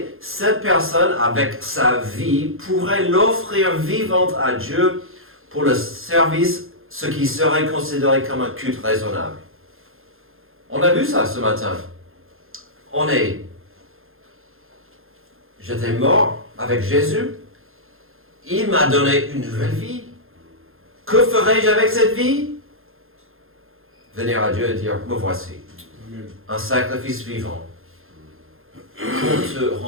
cette personne, avec sa vie, pourrait l'offrir vivante à Dieu pour le service, ce qui serait considéré comme un culte raisonnable. On a vu ça ce matin. J'étais mort avec Jésus. Il m'a donné une nouvelle vie. Que ferai-je avec cette vie? Venir à Dieu et dire, me voici. Amen. Un sacrifice vivant pour te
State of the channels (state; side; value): late; left; 0.60 ms